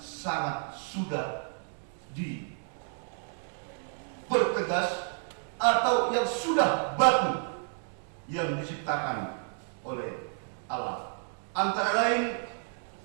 sudah dipertegas atau yang sudah baku yang diciptakan oleh Allah. Antara lain,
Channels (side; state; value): left; silent; 57 dB below the other